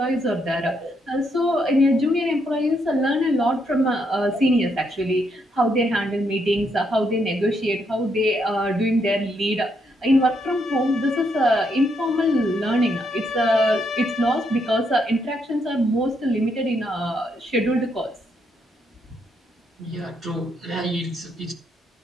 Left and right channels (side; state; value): both; normal; correlation 0.76